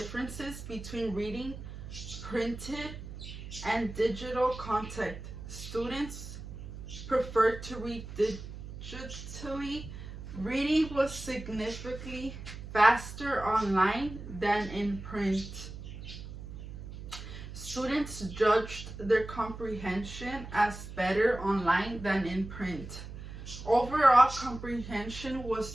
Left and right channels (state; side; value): noise; right; hum, 11 dB below the sound